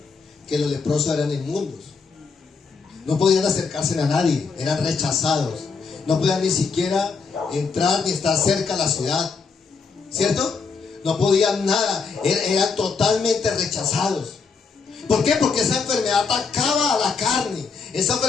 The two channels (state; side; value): quieter; right; 5.0 dB